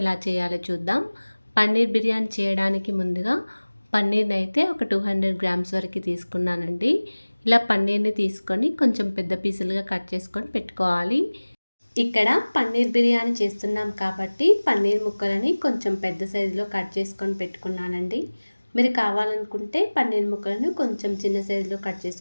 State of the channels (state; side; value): inverted; both; correlation -1.00